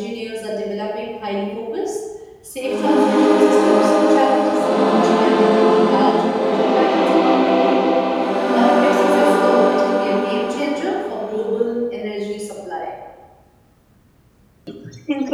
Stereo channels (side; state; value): both; identical; correlation 1.00